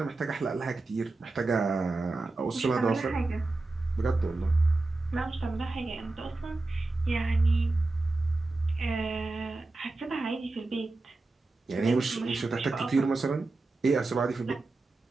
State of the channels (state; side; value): quieter; left; 3.2 dB